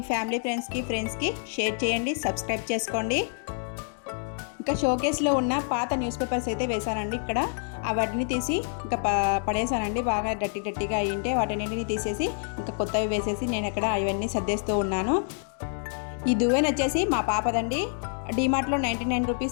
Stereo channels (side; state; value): right; silent; 60 dB below the other